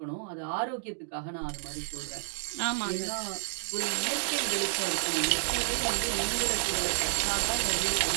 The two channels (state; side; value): silent; left; digital silence